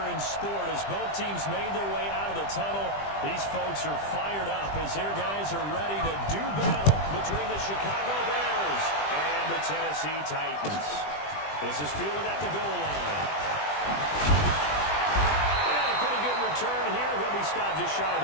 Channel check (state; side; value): late; right; 20 ms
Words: in sport as both teams made their way out of the tunnel. These folks are fired up as their guys are ready to do battle between the Chicago Bears and the Tennessee Titans. This is fielded at the goal line. Turn here. He'll be stopped just shy of